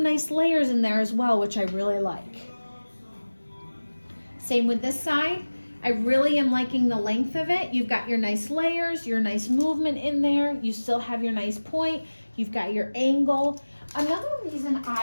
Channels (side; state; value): both; inverted; correlation -1.00